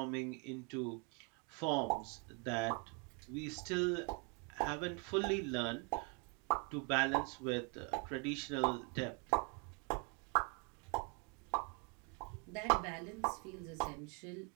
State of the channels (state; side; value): quieter; left; 35.2 dB